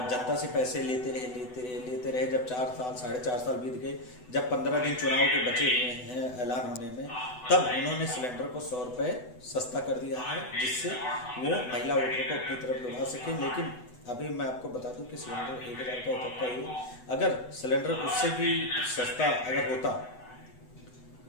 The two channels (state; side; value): late; right; 8.0 ms